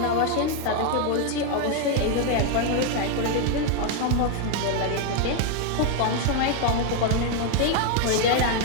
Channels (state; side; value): different; both; correlation 0.01